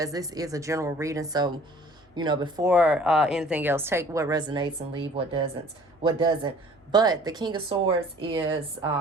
this is a general reading, so you know, before anything else, take what resonates and leave what doesn't. But the King of Swords is,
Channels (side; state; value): both; normal; correlation 0.51